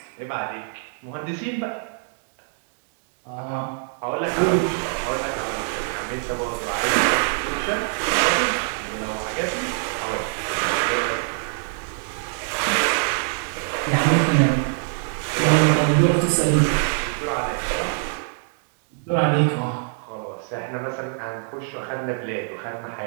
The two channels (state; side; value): silent; left; 62 dB below the other